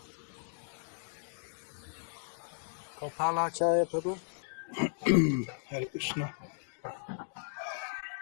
Gopalacharya Prabhu? Hare Krishna.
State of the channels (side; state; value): right; silent; digital silence